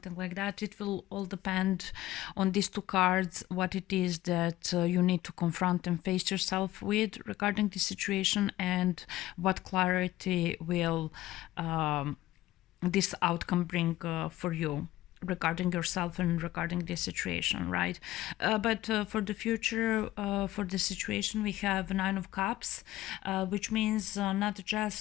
like that. It will all depend on these two cards, what it is that you need to confront and face yourself with regarding the situation, and what clarity will this outcome bring for you regarding yourself and regarding this situation, right? But for the future, for the situation, we have Nine of Cups, which means not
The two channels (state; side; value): quieter; right; 15.7 dB